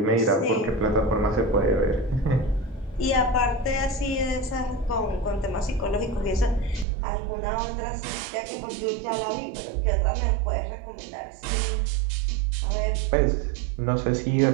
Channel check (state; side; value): drops out; left; at 6.9 s